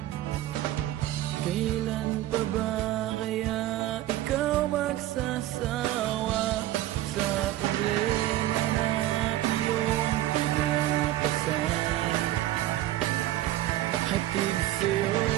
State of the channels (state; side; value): quieter; left; 14.5 dB